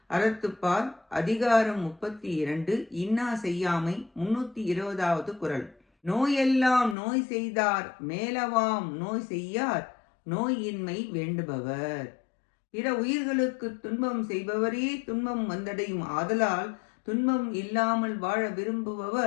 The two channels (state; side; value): drops out; right; at 7.0 s